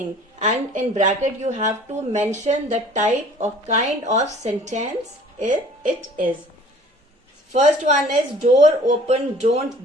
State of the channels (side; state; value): both; normal; correlation 0.50